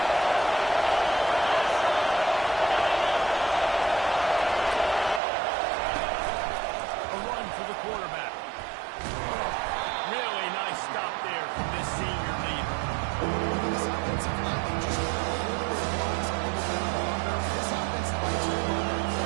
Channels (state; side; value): drops out; left; at 5.2 s